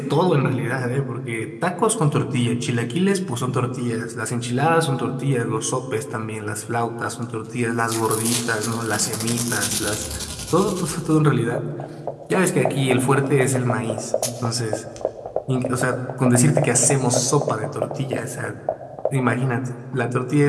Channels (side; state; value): both; identical; correlation 1.00